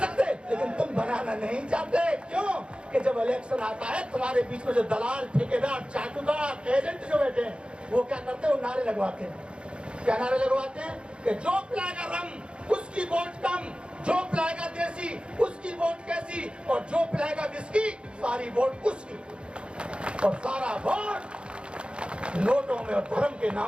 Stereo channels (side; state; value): left; late; 0.055 ms